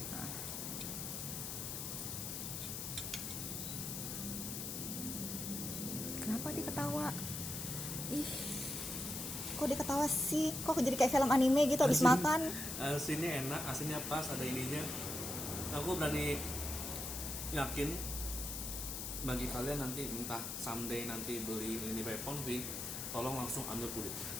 Nah. Kenapa dia ketawa? Ih. Kok dia ketawa sih? Kok jadi kayak film anime gitu habis makan? Asinnya enak, asinnya pas, ada ininya. Aku berani yakin bagi kalian nanti entah someday nanti beli ini Pepon tolong langsung ambil kulit.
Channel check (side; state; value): left; noise; hiss, 5 dB below the sound